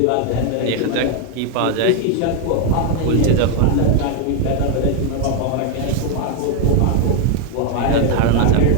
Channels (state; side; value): different; both; correlation 0.01